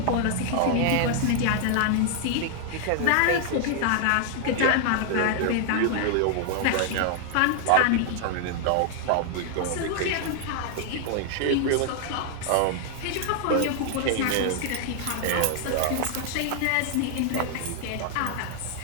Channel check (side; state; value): both; different; correlation 0.00